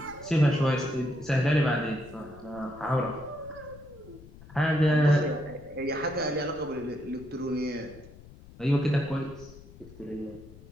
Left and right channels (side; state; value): left; noise; rumble, 19 dB below the sound